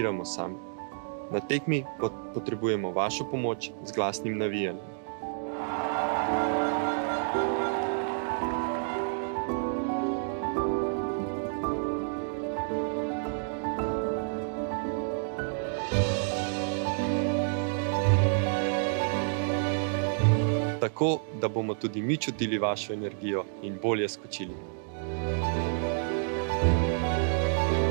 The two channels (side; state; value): left; silent; digital silence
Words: sami. Na tekmi potrebujemo vašo pomoč z glasnim navijanjem. Tako, da bomo tudi mi čutili vašo energijo in bolje skočili.